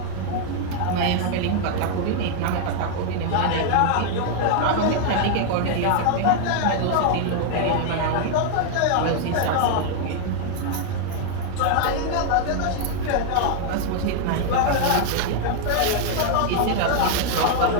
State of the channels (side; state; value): both; different; correlation 0.00